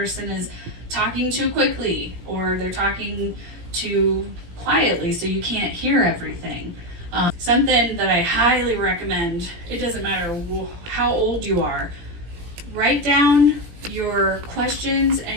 is talking too quickly, or they're talking too quietly so you can't hear everything. Something that I highly recommend, it doesn't matter how old you are, write down your questions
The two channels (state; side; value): late; left; 17 ms